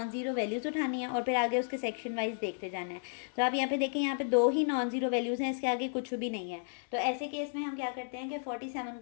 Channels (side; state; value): right; silent; 56 dB below the other